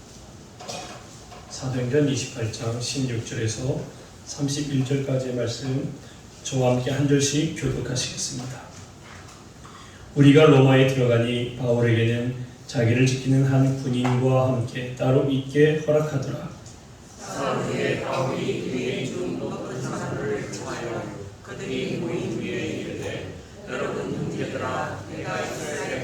사도행전 28장 16절에서 31절까지의 말씀 저와 함께 한 절씩 교독하시겠습니다. 우리가 로마에 들어가니 바울에게는 자기를 지키는 한 군인과 함께 따로 있게 허락하더라. 사울의 바울이 유대인 중 높은 사람들을 청하여 그들이 모인 위에 이르되 여러분 형제들아 내가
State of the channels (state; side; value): identical; both; correlation 1.00